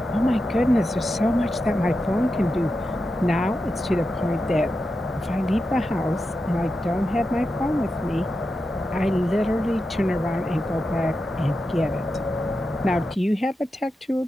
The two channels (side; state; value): both; normal; correlation 0.89